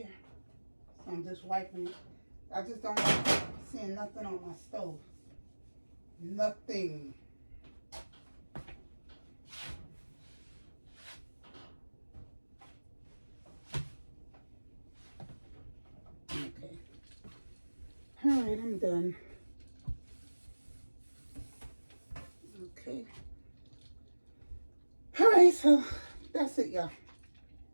So I'm just wiping it. I just don't like seeing nothing on my stove. Nothing. Okay. All right, I'm done. Okay. All right, so that's it, y'all.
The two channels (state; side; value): inverted; both; correlation -1.00